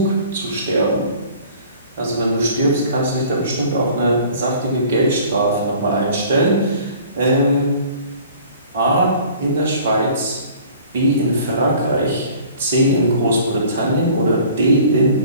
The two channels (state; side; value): inverted; both; correlation -0.49